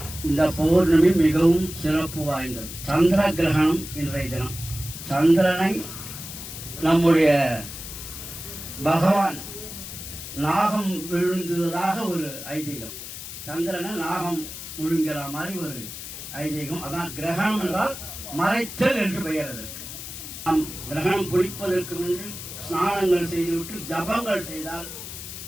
இந்த பௌர்ணமி மிகவும் சிறப்பு வாய்ந்தது. சந்திர கிரகணம் இன்றைய தினம். சந்திரனை நம்முடைய பகவான் நாகம் விழுந்ததாக ஒரு ஐதீகம். சந்திரனை நாகம் விழுங்கிற மாதிரி ஒரு ஐதீகம். அதான் கிரகணம் என்றால் மறைத்தல் என்று பெயர். அதற்கு நாம் கிரகணம் பிடிப்பதற்கு முன்பு ஸ்நானங்கள் செய்துவிட்டு ஜபங்கள் செய்தால்,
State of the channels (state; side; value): noise; left; hiss, 10 dB below the sound